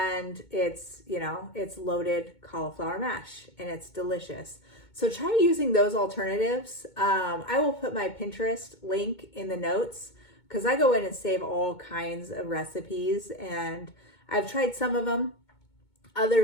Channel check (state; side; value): late; right; 2.2 ms